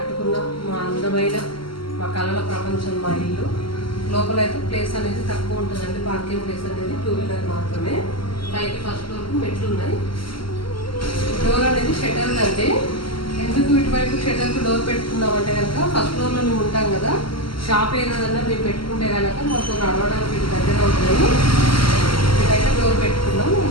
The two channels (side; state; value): right; late; 0.74 ms